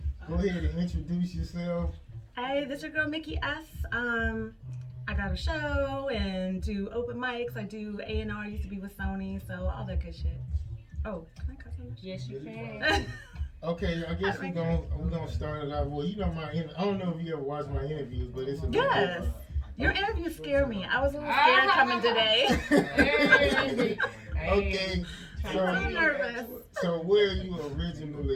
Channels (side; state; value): both; identical; correlation 1.00